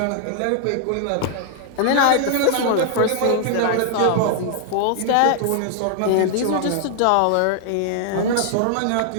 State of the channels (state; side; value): different; both; correlation 0.00